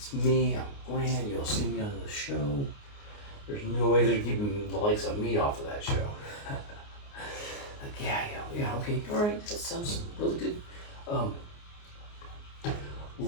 me, I'm Glenn, you'll see me on the show. There's no way they're keeping the likes of me off of that show. Like, yeah, okay, all right, that sounds really good.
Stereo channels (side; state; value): right; late; 29 ms